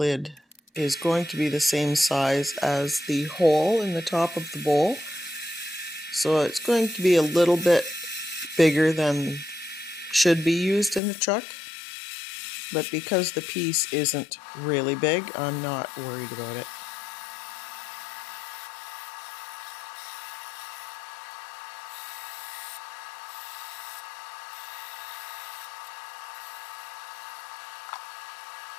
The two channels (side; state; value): right; drops out; at 11.0 s